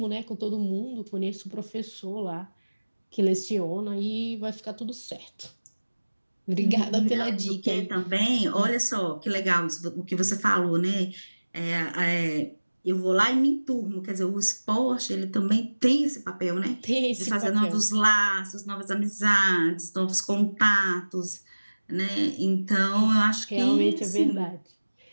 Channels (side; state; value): both; inverted; correlation -1.00